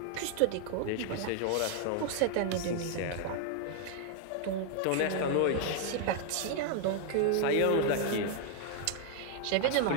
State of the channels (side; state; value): both; different; correlation 0.00